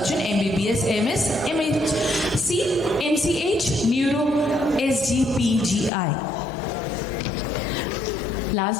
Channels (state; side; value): drops out; right; at 5.9 s